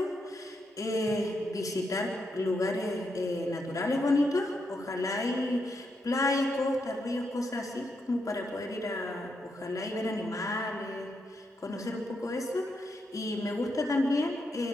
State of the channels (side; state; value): both; normal; correlation 0.81